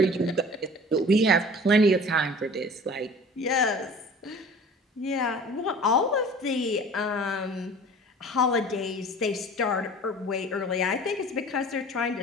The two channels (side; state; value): both; normal; correlation 0.44